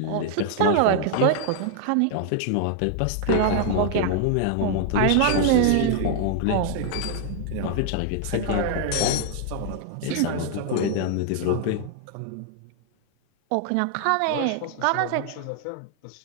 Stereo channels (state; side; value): different; both; correlation 0.00